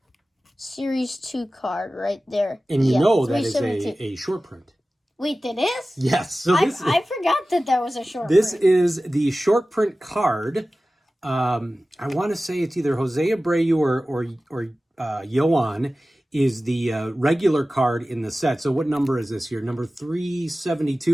Series 2 card right there. And you know that is a short print. Wait, that is? Yes. So I forgot that was a short print. This is the short print card. I want to say it's either Jose Abreu or Yoan is the regular card in the set. So what number is this here? Number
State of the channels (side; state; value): both; normal; correlation 0.96